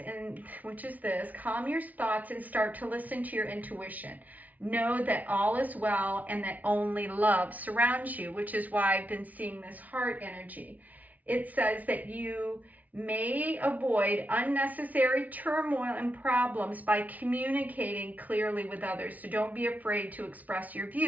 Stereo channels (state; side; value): late; left; 0.074 ms